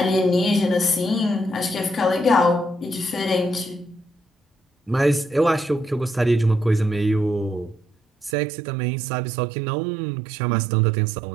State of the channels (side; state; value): left; drops out; at 8.3 s